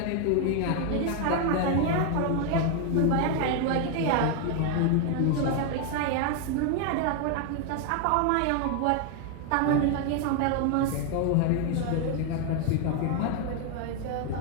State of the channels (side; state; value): both; different; correlation 0.00